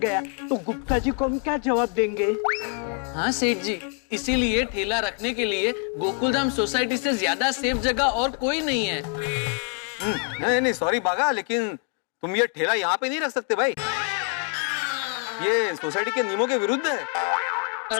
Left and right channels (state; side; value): quieter; right; 39.5 dB